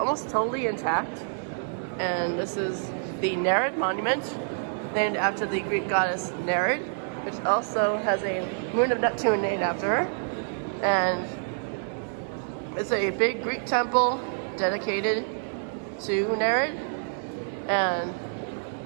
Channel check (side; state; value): left; silent; digital silence